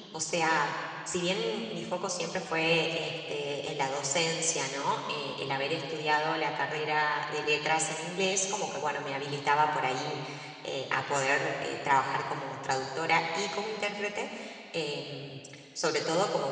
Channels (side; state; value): both; identical; correlation 1.00